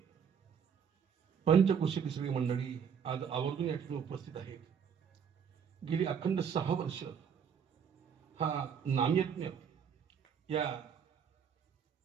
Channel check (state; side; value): quieter; left; 7.3 dB